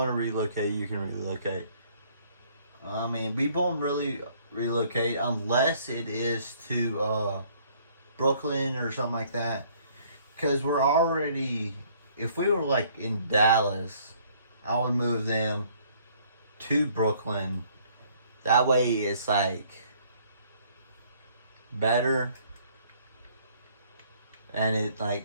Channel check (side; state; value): both; inverted; correlation -0.61